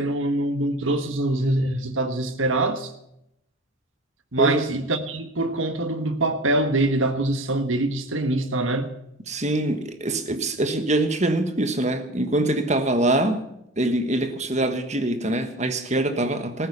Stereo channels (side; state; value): both; normal; correlation 0.35